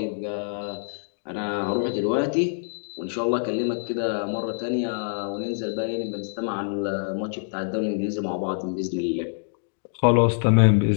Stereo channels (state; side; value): silent; right; digital silence